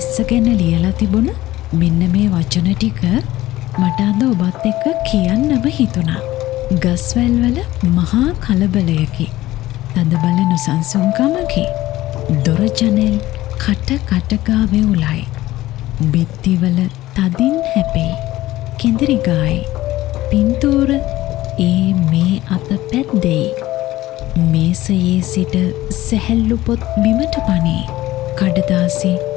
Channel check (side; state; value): right; quieter; 16.2 dB